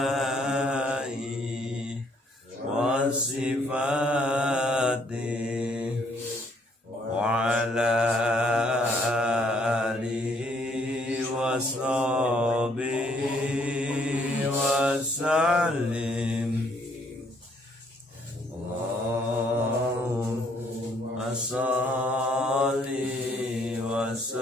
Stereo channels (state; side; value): normal; both; correlation 0.67